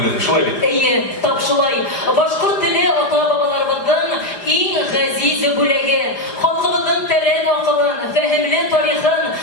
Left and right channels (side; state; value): right; late; 4.9 ms